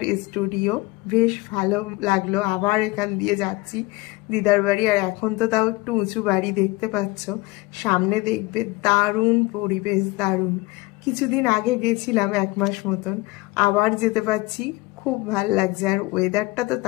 স্টুডিও, বেশ ভালো লাগলো। আবার এখান দিয়ে যাচ্ছি দিদার বাড়ি। আর এখন তো তাও একটু উঁচু বাড়ি দেখতে পাচ্ছ, সামনে দেখবে দারুণ পরিবেশ, দারুণ। কিছুদিন আগে গেছিলাম 1 মাস মতন, আবার যেতে পারছি, খুব ভাল লাগছে। আর ওয়েদারটা তো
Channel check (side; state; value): right; quieter; 22.0 dB